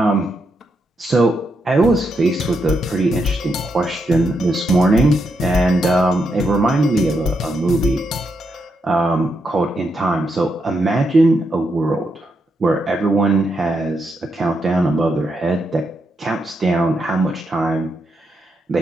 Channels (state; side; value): normal; both; correlation 0.81